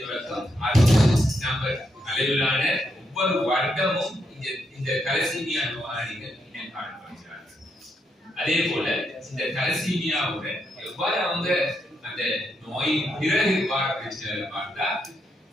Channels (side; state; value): both; normal; correlation 0.80